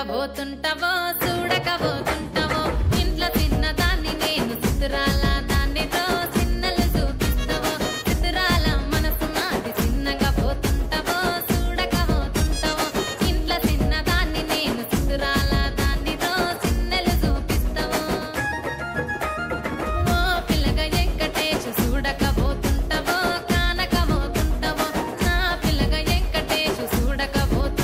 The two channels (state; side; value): identical; both; correlation 1.00